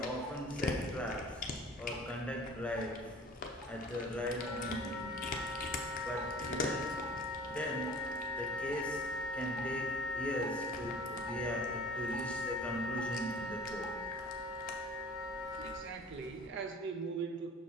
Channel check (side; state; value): both; normal; correlation 0.45